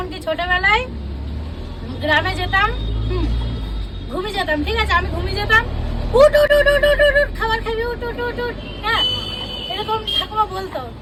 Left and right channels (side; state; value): both; identical; correlation 1.00